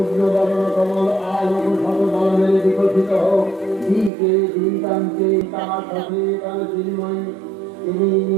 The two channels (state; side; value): drops out; left; at 4.1 s